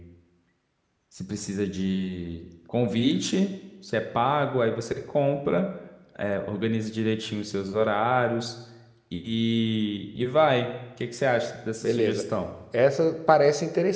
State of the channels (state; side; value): identical; both; correlation 1.00